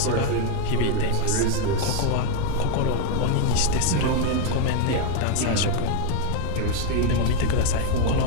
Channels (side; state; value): both; different; correlation 0.01